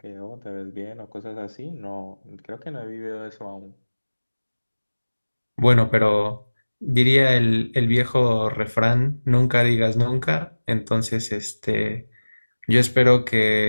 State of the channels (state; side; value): inverted; both; correlation -1.00